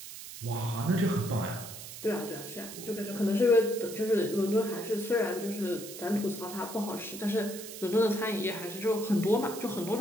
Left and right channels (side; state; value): right; noise; hiss, 12 dB below the sound